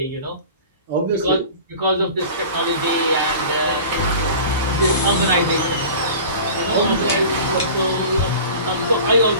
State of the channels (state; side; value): inverted; both; correlation -0.39